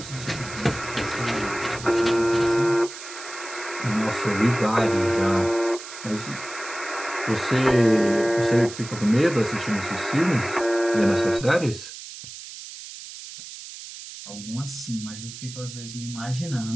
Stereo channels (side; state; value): right; noise; hiss, 13 dB below the sound